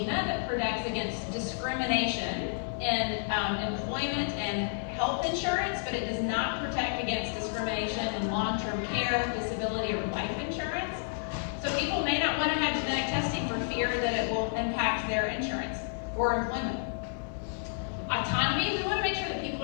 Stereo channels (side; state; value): right; silent; 57 dB below the other